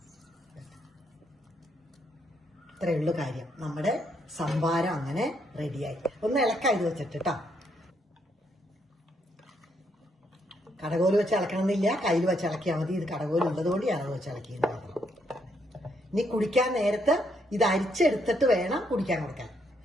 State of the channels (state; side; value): normal; both; correlation 0.75